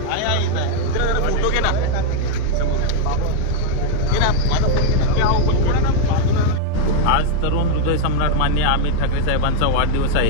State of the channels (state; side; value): different; both; correlation 0.00